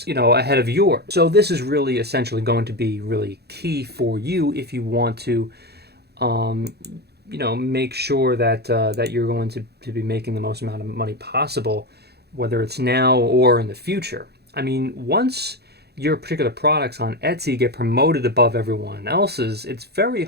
ahead of yours. So this is really essentially going to be really key for you if you want to make sure that you're going to be making the most amount of money possible, whether it's now or in the future. I mean, once your particular products on Etsy get promoted above everyone else's, it's very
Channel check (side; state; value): left; late; 0.47 ms